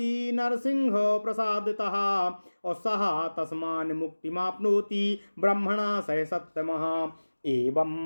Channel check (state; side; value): inverted; both; correlation -1.00